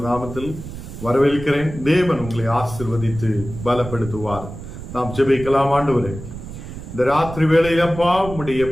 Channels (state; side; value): noise; right; rumble, 11 dB below the sound